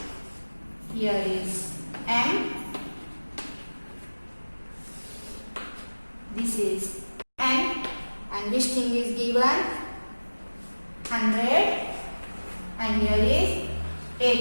Here is M. This is N. And this thing is given 100 and here is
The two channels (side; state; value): both; inverted; correlation -1.00